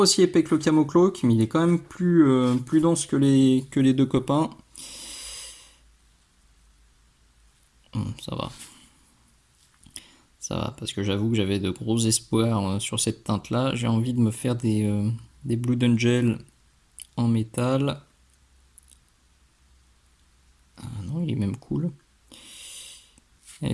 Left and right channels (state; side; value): identical; both; correlation 1.00